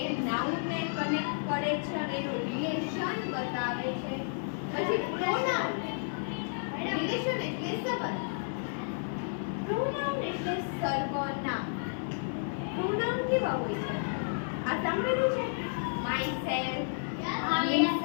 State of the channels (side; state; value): right; silent; 57 dB below the other